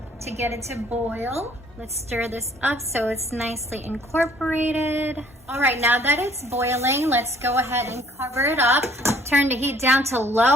to get it to boil. Let's stir this up so it's nicely incorporated. All right, now that it's boiling, let's go ahead and cover it up. Turn the heat down to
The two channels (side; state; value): both; normal; correlation 0.58